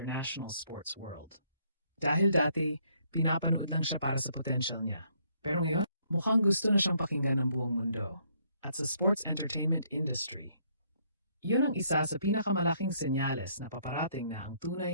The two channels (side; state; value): both; inverted; correlation -0.68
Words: sports world. Dahil dati, pinapanood lang siya para sa potential niya. Pero ngayon, mukhang gusto na siyang pakinggan ng buong mundo. At sa sports entertainment industry, yun ang isa sa pinakamalaking senyales na paparating na ang